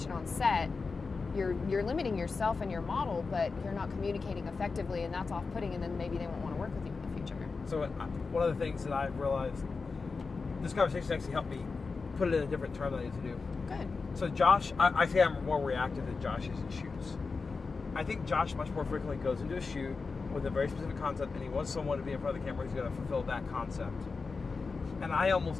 on set, you're limiting yourself and your model, but you're not communicating effectively, and that's off-putting, and then maybe they won't want to work with you in the future. So one of the things that I've realized, this conversation actually helped me put it in a different term than I need to do. Good. So Josh, I say I'm more reactive than Josh is in shoots. I think Josh much more frequently goes into a shoot with a very specific concept, and he wants someone to be in front of the camera who's going to fulfill that concept. And I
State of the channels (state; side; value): quieter; right; 4.4 dB